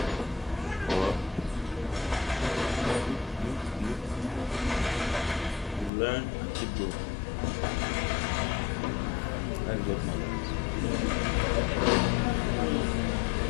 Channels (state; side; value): drops out; right; at 5.9 s